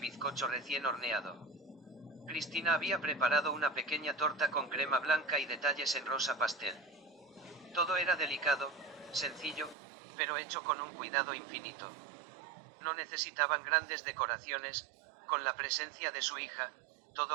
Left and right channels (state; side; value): drops out; left; at 9.8 s